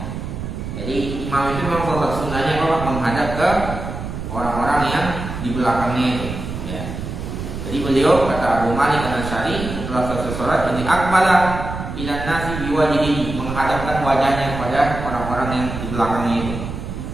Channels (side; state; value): right; noise; rumble, 7 dB below the sound